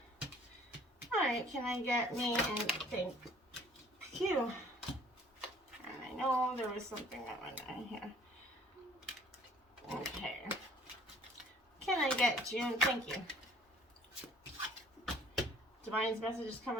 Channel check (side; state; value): both; normal; correlation 0.54